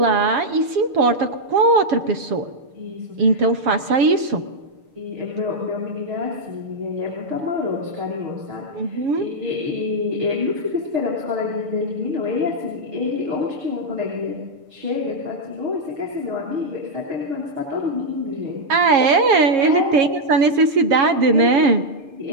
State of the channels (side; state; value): left; late; 7.3 ms